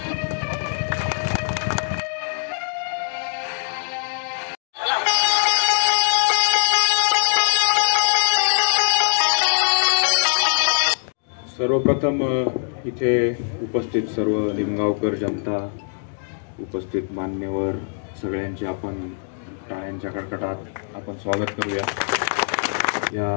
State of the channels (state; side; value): silent; right; digital silence